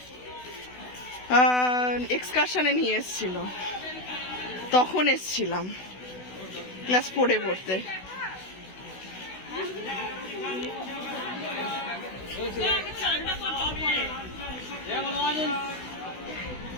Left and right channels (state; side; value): late; right; 16 ms